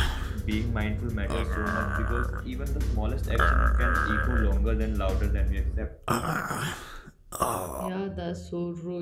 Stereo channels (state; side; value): identical; both; correlation 1.00